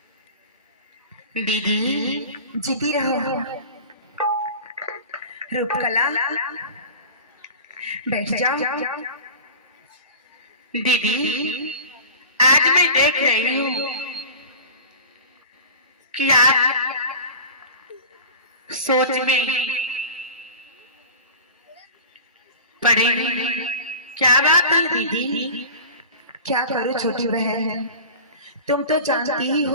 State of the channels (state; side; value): inverted; both; correlation -0.35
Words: दीदी जीती रहो रूपकला, बैठ जाओ। दीदी आज मैं देख रही हूँ कि आप सोच में पड़े हैं। क्या बात है दीदी? क्या करूं छोटी बहन, तुम तो जानती ही